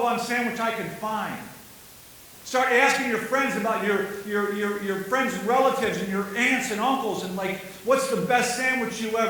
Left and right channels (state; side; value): identical; both; correlation 1.00